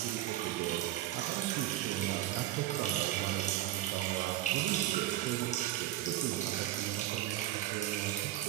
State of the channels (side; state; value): left; quieter; 14.2 dB